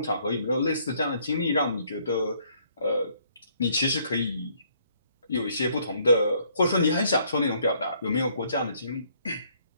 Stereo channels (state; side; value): inverted; both; correlation -0.66